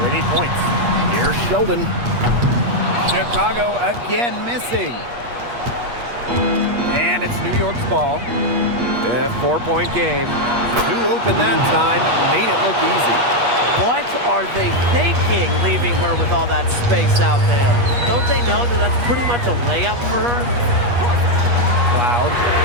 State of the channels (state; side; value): late; left; 8.4 ms